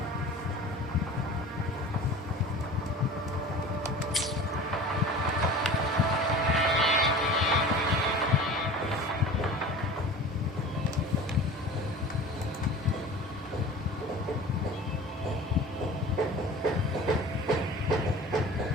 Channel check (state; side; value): normal; both; correlation 0.39